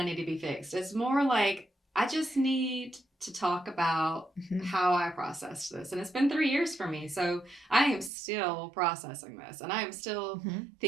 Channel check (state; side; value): drops out; left; at 8.1 s